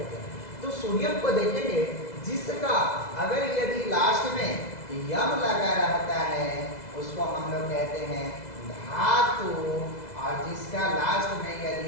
हैं, तो सोडियम को देखेंगे जिसका अगर यदि लास्ट में यम लगा रहता है उसको हम लोग कहते हैं धातु, और जिसका लास्ट में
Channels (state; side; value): late; right; 2.0 ms